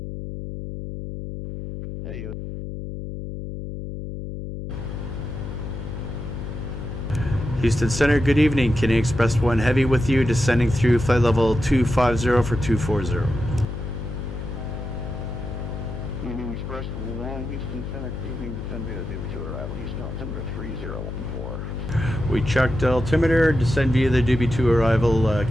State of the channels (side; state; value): left; noise; hum, 7 dB below the sound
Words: Hey, you. Houston Center, good evening. Canadian Express 1 Heavy with you, descending through flight level 250 for 240. Canadian Express 1, Houston Center, evening, descend via the DB2 arrival, Houston altimeter 3014. We checked altimeter, descend via the DB2 arrival,